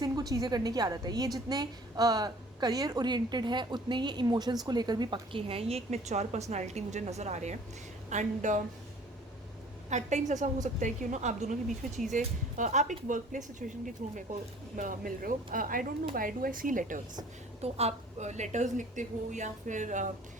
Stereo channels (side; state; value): both; normal; correlation 0.51